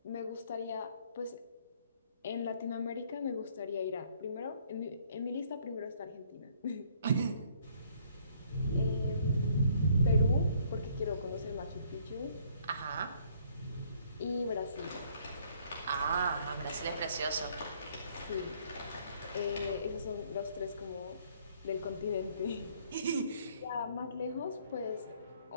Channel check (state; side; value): inverted; both; correlation -0.63